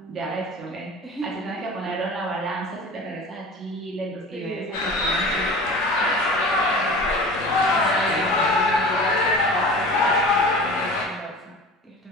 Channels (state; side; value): normal; both; correlation 0.37